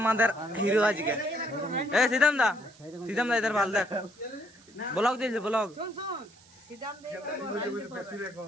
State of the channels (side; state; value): right; noise; hiss, 26 dB below the sound